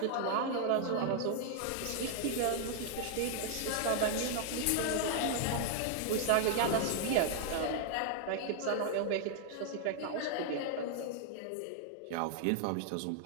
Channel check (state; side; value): different; both; correlation 0.00